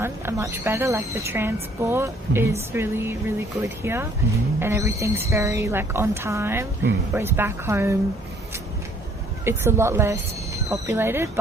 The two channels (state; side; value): normal; both; correlation 0.61